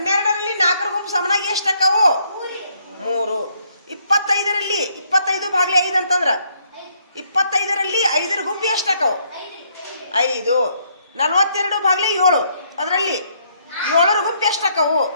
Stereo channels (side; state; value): both; inverted; correlation -0.70